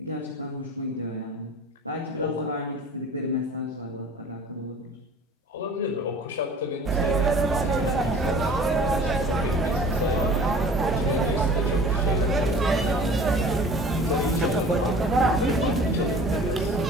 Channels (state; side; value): normal; both; correlation 0.44